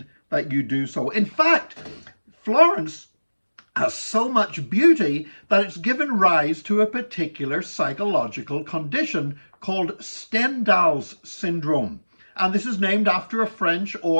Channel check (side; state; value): both; inverted; correlation -1.00